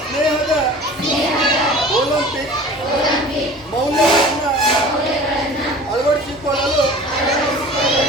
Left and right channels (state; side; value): normal; both; correlation 0.42